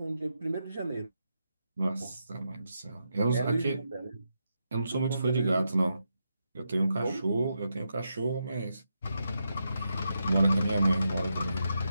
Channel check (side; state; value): both; inverted; correlation -0.84